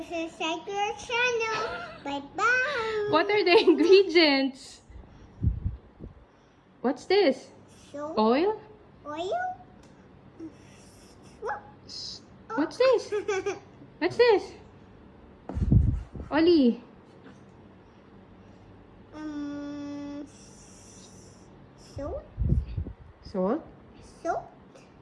to subscribe to our channel. Bye-bye. What are the ingredients? What's this? Soap, Oil? oil. What's this? What's this? Oli. Soap, Salt. soap,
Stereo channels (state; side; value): identical; both; correlation 1.00